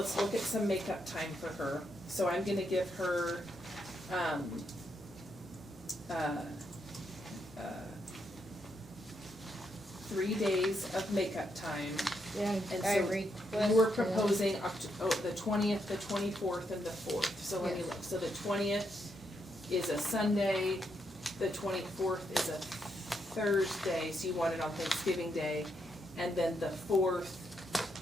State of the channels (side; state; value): both; normal; correlation 0.79